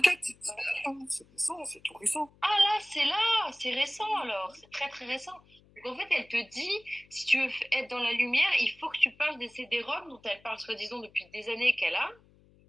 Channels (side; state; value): left; noise; hum, 29 dB below the sound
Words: c'est récent, c'est tout récent. Ah là, c'est récent alors, c'est très très récent. Donc en fait, elle te dit, si tu veux être dans la lumière, il faut que tu parles des CD-ROM dont elle parle soi-disant depuis des années qu'elle a.